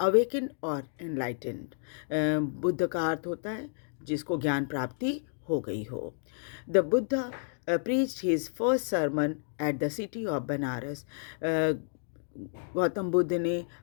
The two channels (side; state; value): right; silent; digital silence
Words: और एनलाइटेंड, बुद्ध का अर्थ होता है जिसको ज्ञान प्राप्ति हो गई हो। The Buddha preached his first sermon at the city of Banaras. Gautam Buddha ने